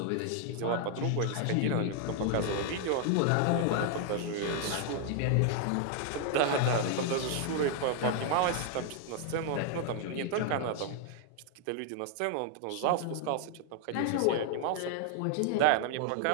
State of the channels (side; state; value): both; different; correlation 0.00